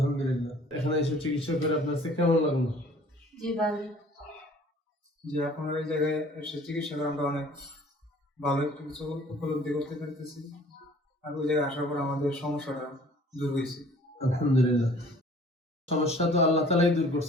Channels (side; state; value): both; normal; correlation 0.52